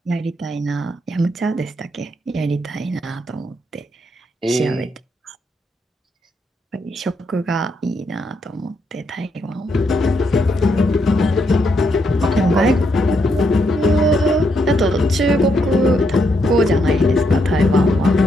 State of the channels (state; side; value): normal; both; correlation 0.78